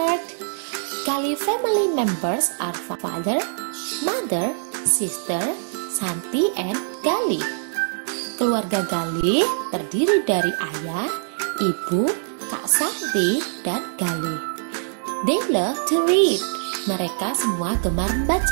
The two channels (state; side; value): silent; left; digital silence